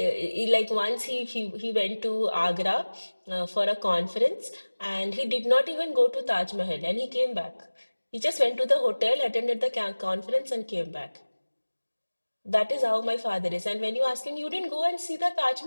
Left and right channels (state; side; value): inverted; both; correlation -1.00